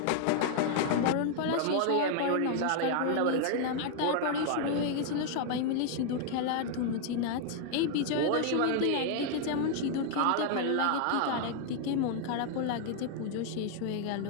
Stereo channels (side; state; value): both; different; correlation 0.00